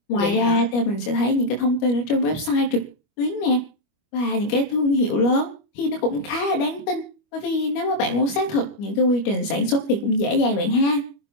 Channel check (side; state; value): right; late; 25 ms